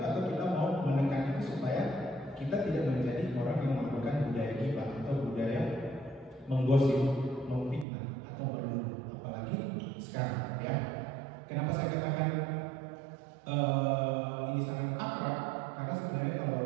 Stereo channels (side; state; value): left; drops out; at 7.9 s